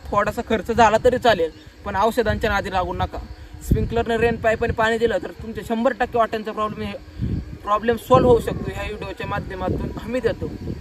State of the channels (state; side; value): identical; both; correlation 1.00